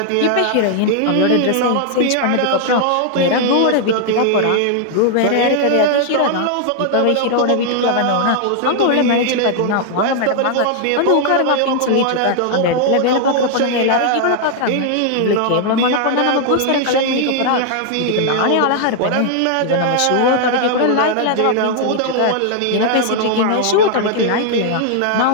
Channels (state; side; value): different; both; correlation 0.00